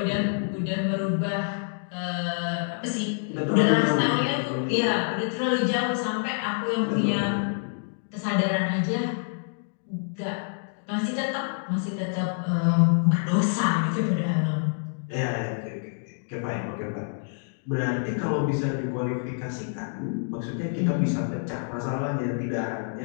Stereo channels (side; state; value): right; silent; digital silence